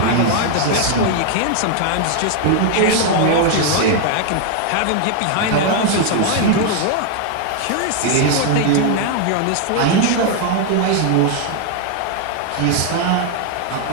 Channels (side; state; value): both; different; correlation 0.00